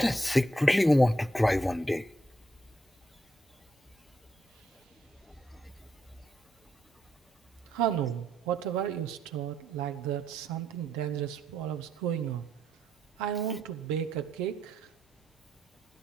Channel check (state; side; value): normal; both; correlation 0.77